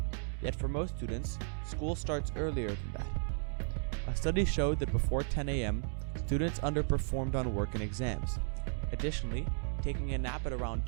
Yet for most students, school starts earlier than that. A study showed that before 10 a.m., students underperformed on work and exams. Additionally, taking a nap at around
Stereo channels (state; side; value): silent; left; digital silence